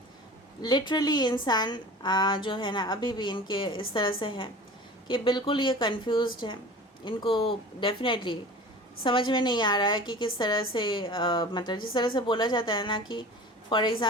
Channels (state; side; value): normal; both; correlation 0.39